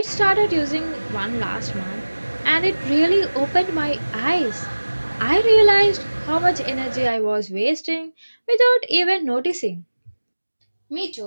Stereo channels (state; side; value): inverted; both; correlation -1.00